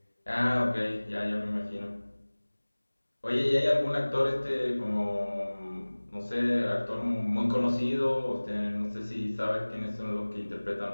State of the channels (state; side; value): inverted; both; correlation -1.00